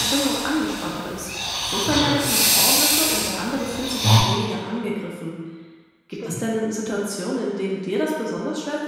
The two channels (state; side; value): identical; both; correlation 1.00